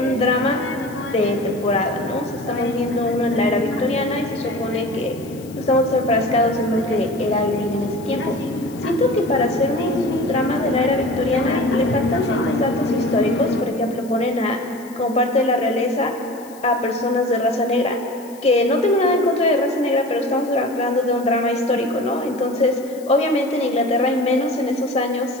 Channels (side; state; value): left; noise; hiss, 23 dB below the sound